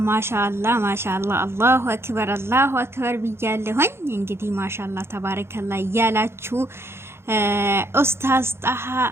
ማሻአላህ ማሻአላህ አላሁ አክበር ብያለሁኝ። እንግዲህ ማሻአላህ ተባረከላህ እያላችሁ ኡስታዝ ጣሃ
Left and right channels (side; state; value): left; late; 0.12 ms